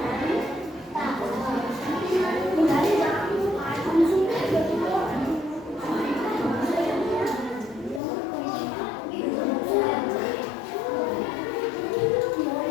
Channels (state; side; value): drops out; right; at 8.0 s